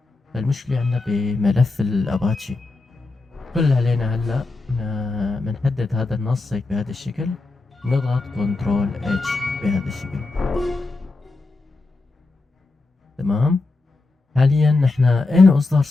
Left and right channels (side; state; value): right; quieter; 3.4 dB